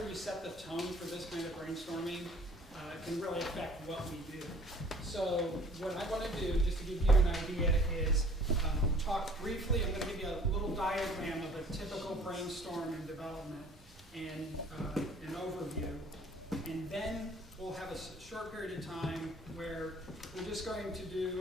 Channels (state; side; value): normal; both; correlation 0.53